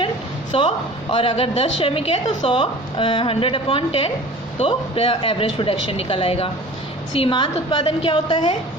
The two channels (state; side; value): normal; both; correlation 0.42